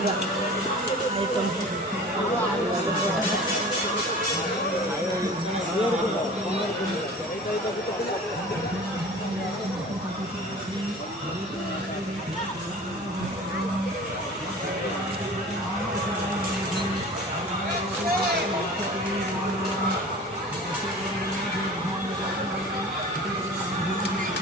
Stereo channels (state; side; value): normal; both; correlation 0.41